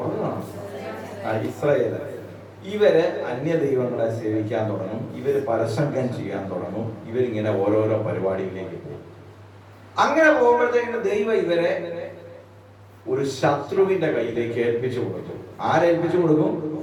ഇസ്രായേൽ. ഇവര് അന്യദൈവങ്ങളെ സേവിക്കാൻ തുടങ്ങും. ഇവര് പരസംഗം ചെയ്യാൻ തുടങ്ങും. ഇവരിങ്ങനെ ഓരോരോ പരിപാടിയിലേക്ക് പോകും. അങ്ങനെ പോകുമ്പോഴത്തേക്കും ദൈവം ഇവരെ ഒരു ശത്രുവിന്റെ കയ്യിലേക്ക് ഏൽപ്പിച്ചു കൊടുക്കും. ആരേൽപ്പിച്ചു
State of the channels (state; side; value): identical; both; correlation 1.00